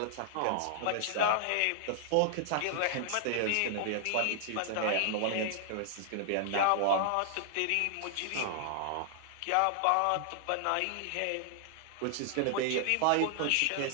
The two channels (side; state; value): both; different; correlation -0.01